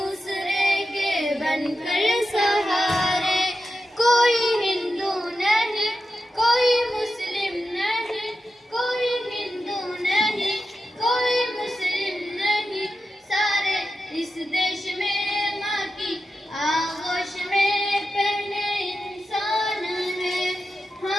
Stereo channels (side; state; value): both; normal; correlation 0.90